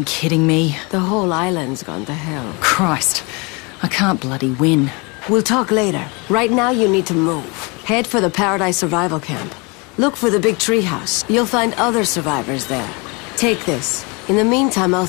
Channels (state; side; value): quieter; right; 29.4 dB